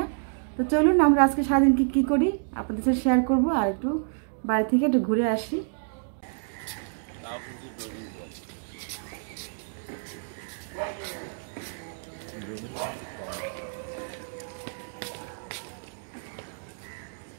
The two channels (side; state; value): left; silent; digital silence